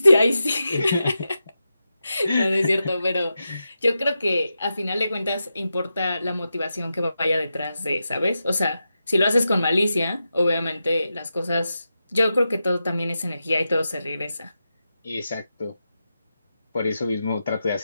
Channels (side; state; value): both; inverted; correlation -0.89